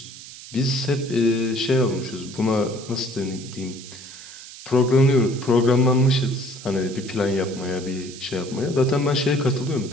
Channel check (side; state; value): right; noise; hiss, 15 dB below the sound